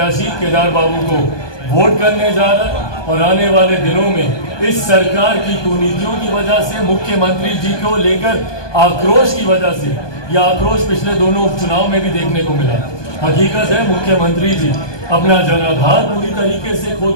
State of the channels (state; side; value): late; right; 1.2 ms